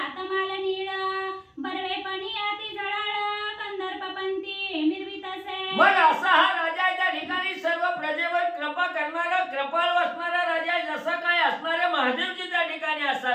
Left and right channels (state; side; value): identical; both; correlation 1.00